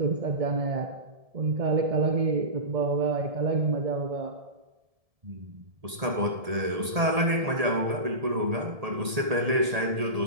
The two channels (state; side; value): late; left; 1.8 ms